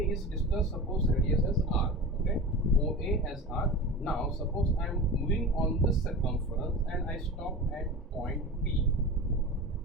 is distance, suppose radius as R. Okay, OA as R. Now suppose I am moving on the circumference and I stop at point B.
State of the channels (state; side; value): normal; both; correlation 0.31